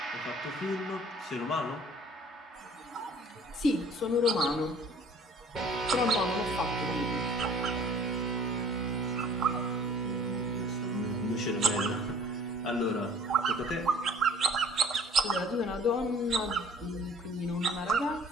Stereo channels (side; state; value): both; normal; correlation 0.51